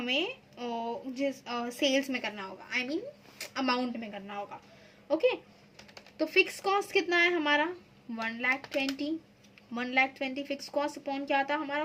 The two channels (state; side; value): identical; both; correlation 1.00